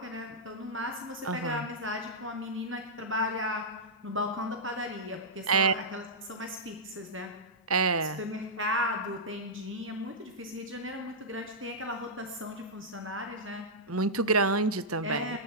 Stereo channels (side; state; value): both; normal; correlation -0.11